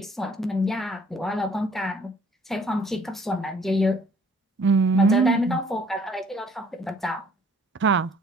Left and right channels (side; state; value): both; normal; correlation 0.58